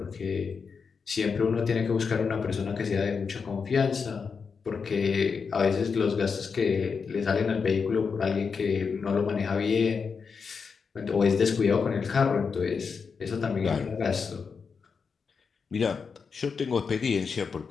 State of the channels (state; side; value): quieter; right; 5.6 dB